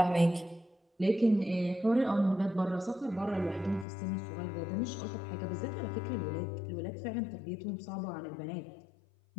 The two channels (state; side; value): drops out; right; at 3.9 s